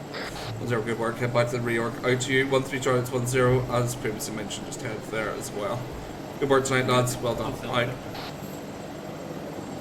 0, good work, head back to the reorg. Out to you, 1-3 Charlie, 1-0, as previously mentioned, just head there as well. Good work tonight, lads, well done. Out.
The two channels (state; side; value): identical; both; correlation 1.00